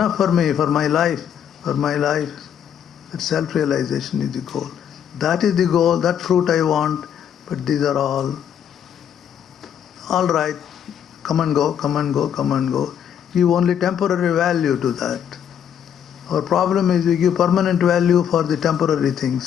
for me, for my life. That self-realization is the goal. That is the goal, that fruit I want, but these are all right. Come and go. Give only temporary value to that. Our problem is we give permanent value for the temporary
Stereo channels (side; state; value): right; quieter; 8.9 dB